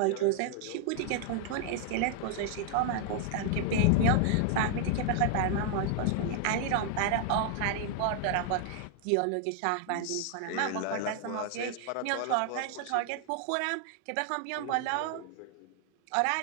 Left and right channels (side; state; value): both; different; correlation 0.00